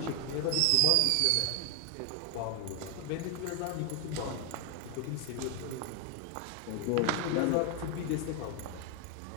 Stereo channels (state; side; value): different; both; correlation 0.01